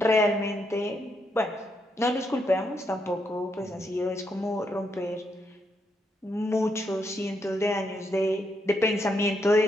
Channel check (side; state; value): both; normal; correlation 0.79